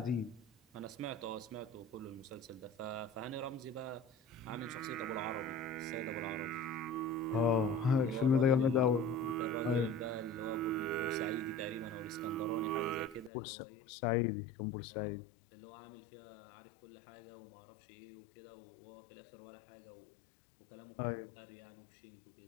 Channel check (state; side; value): drops out; right; at 13.3 s